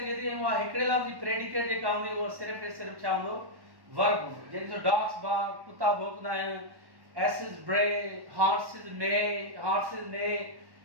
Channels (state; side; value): late; left; 1.1 ms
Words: थी, ऐं उहा हिकिड़े लफ़्ज़ जी प्रेडिकेट जेका हूंदी उहा सिर्फ़ु ऐं सिर्फ़ु छा हूंदो, वर्ब हूंदो। जंहिंजो डॉग्स बार्क, कुता भौंकदा आहिनि, एसिस ब्रे, हॉर्सिस ने,